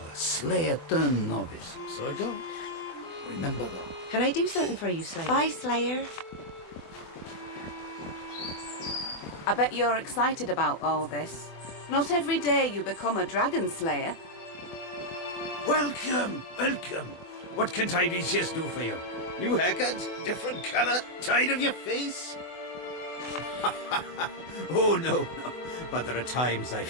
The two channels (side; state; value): right; late; 24 ms